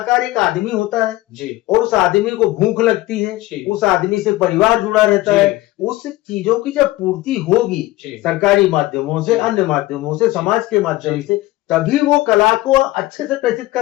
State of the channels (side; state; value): right; quieter; 17.8 dB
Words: एक आदमी होता है जी। और उस आदमी को भूख लगती है, उस आदमी से परिवार जुड़ा रहता है, उस चीजों की जब पूर्ति होगी सरकारी माध्यमों से, अन्य माध्यमों से, समाज के माध्यम से, तभी वो कला को अच्छे से प्रेषित